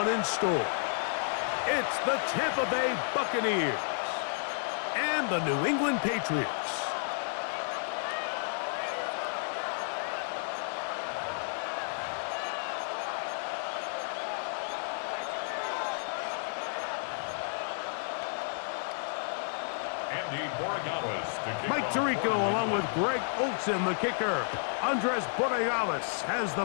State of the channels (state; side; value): silent; right; digital silence